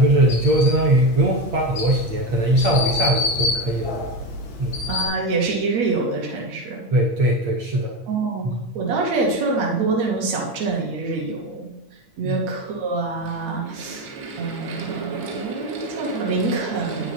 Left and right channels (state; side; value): late; left; 8.6 ms